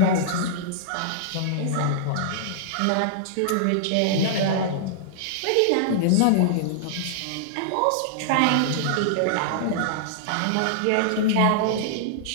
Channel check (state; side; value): different; both; correlation -0.01